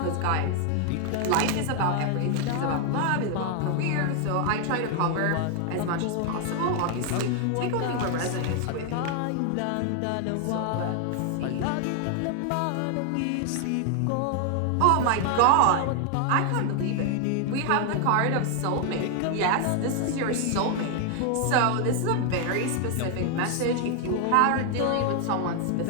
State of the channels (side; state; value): both; different; correlation 0.00